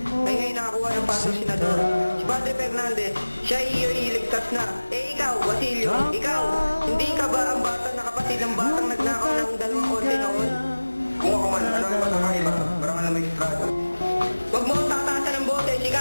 ay ngayon nakakuha ng pasong senador. Si Padre Fernandez, siya iligtas na. Ikaw, Basilio, ikaw, hindi ka ba ang bata na kapatid ng batang nagnakaw ng 2 konti noon? Kung ako man, ano ang matakaiba? Parang alam may estrada. Huwag mo ang tataasan ng boses,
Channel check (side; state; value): both; inverted; correlation -1.00